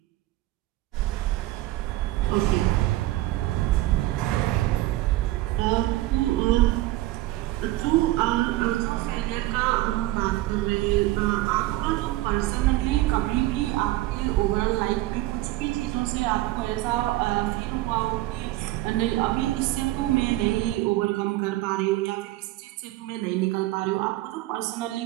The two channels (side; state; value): left; quieter; 16.9 dB